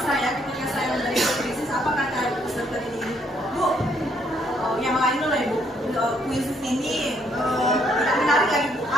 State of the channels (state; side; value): normal; both; correlation 0.70